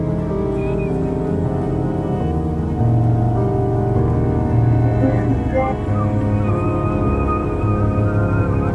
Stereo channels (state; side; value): identical; both; correlation 1.00